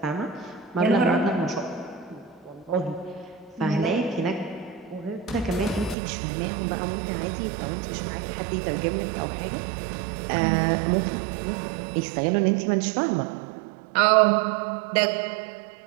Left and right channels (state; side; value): drops out; left; at 6.0 s